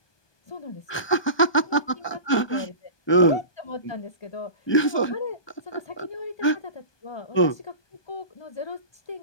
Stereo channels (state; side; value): late; right; 1.2 ms